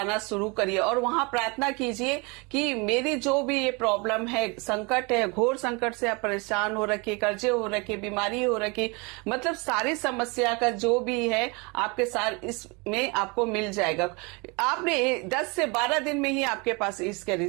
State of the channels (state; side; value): quieter; left; 28.9 dB